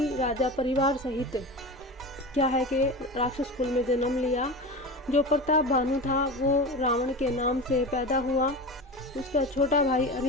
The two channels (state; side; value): normal; both; correlation 0.27